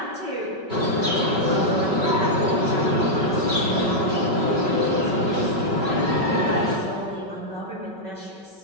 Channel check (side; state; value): left; late; 5.3 ms